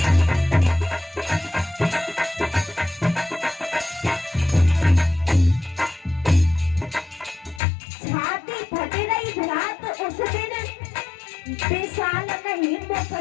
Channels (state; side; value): drops out; right; at 7.6 s